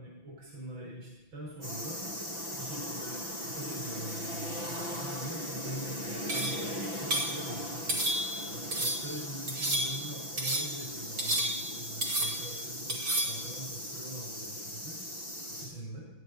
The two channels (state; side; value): late; left; 6.0 ms